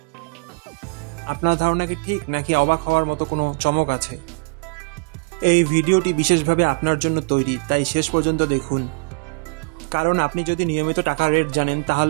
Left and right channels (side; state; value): left; quieter; 30.9 dB